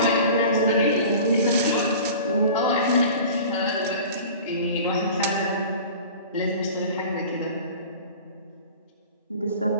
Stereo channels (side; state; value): both; inverted; correlation -0.39